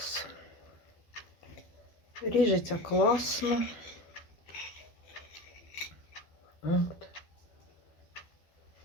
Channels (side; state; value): right; late; 12 ms